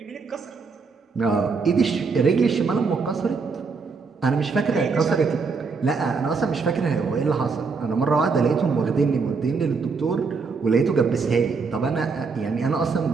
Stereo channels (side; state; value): left; quieter; 4.8 dB